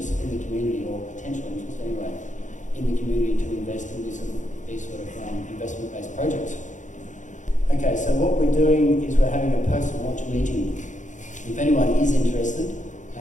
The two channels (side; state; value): right; late; 0.36 ms